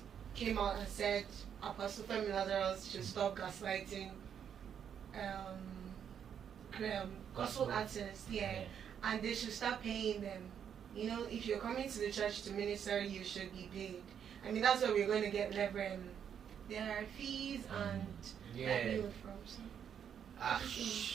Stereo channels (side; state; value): left; quieter; 8.3 dB